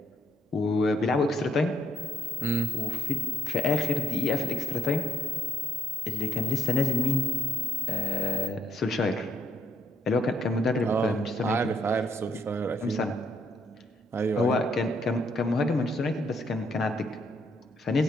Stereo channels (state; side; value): normal; both; correlation 0.70